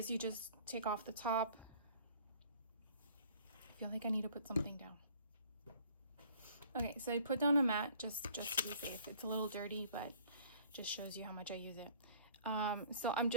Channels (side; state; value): both; inverted; correlation -0.54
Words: you just take off the top. I feel like I need to put something down. Okay, so I put down a mat just to be safe. It's a little dirty, but just shows you how much I use it. So I'm